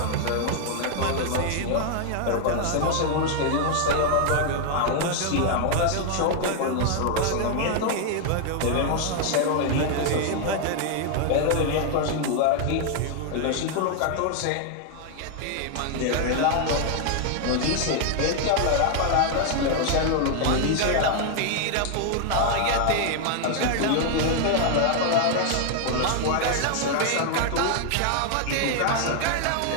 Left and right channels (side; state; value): both; different; correlation 0.00